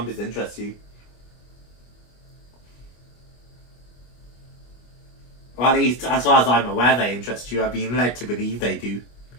interest you. Or at least, as far as I'm aware, they interest you. I've been led to believe they do.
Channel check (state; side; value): late; right; 25 ms